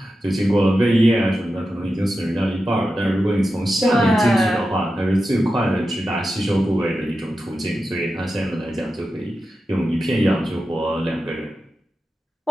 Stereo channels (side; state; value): both; normal; correlation 0.91